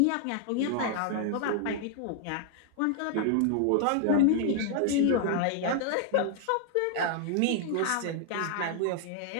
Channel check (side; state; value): both; different; correlation 0.00